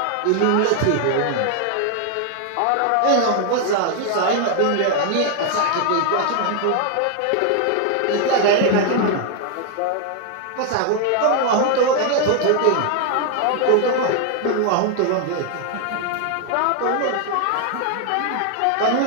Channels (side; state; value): both; different; correlation 0.00